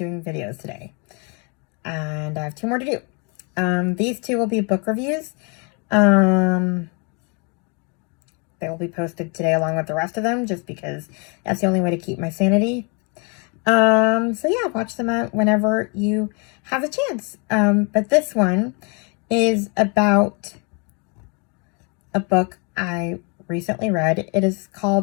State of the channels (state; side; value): quieter; right; 34.1 dB